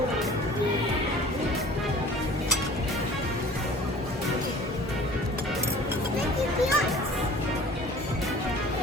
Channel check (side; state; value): both; normal; correlation 0.46